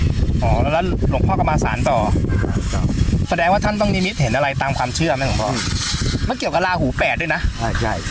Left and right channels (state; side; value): identical; both; correlation 1.00